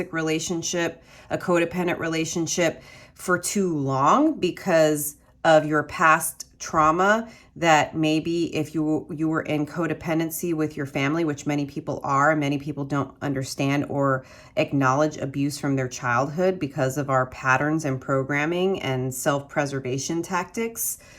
relationship, a codependent relationship for too long because of your past trauma, that maybe if you were in codependency with your family, which many people are, many people don't understand or acknowledge abuse from their childhood because of our patterns and programming and self-preservation tactics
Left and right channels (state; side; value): identical; both; correlation 1.00